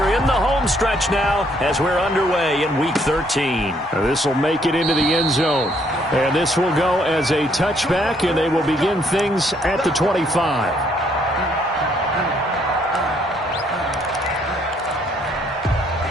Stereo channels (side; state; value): both; normal; correlation 0.68